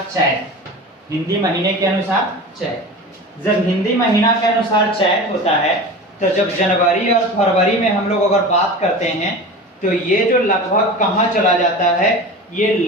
चैत, हिंदी महीने के अनुसार चैत। जब हिंदी महीना के अनुसार चैत होता है तो जब जनवरी और फरवरी में हम लोग अगर बात करते हैं तो ये जो लगभग कहाँ चला जाता है, ये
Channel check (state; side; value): normal; both; correlation 0.33